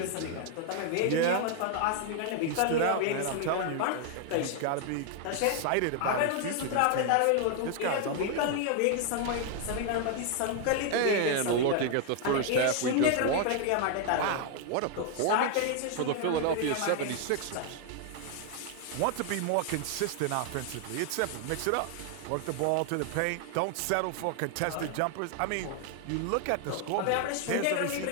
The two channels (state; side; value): different; both; correlation 0.00